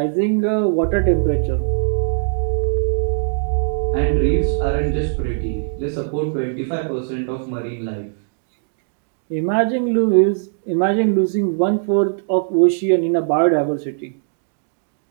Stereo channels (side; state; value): left; silent; digital silence